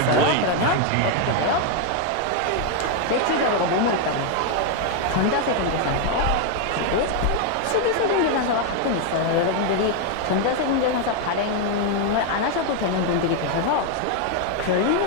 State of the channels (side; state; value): both; different; correlation 0.01